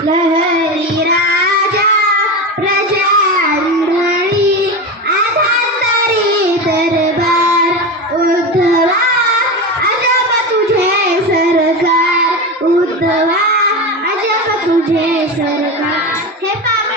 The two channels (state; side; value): normal; both; correlation 0.21